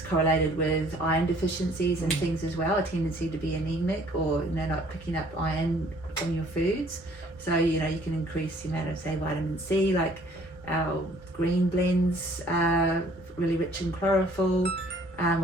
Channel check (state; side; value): normal; both; correlation 0.58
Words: correlated with iron deficiencies and things as well, a tendency to be anemic, or, you know, not picking up iron from your foods. So, you know, you can increase the amount of, say, vitamin C, like our green blends are really rich in chlorophyll,